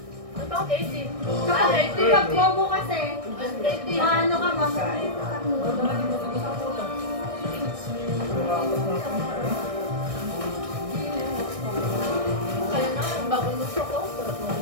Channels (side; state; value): left; late; 1.6 ms